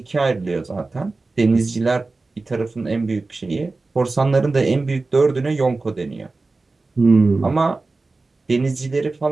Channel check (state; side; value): quieter; left; 3.6 dB